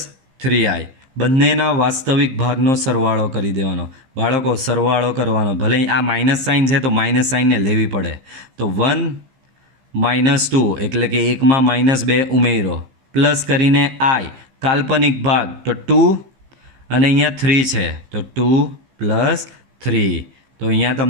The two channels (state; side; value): late; left; 15 ms